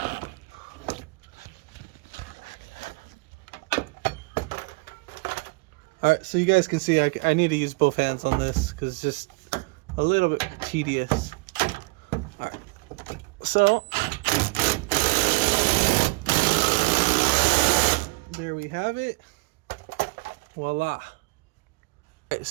All right, so you guys can see I need to use both hands on this because it's just a little bit tedious. All right, so there we have it. Voila. All right,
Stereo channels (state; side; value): quieter; left; 26.4 dB